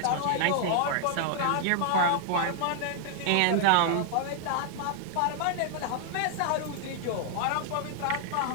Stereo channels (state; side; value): different; both; correlation 0.00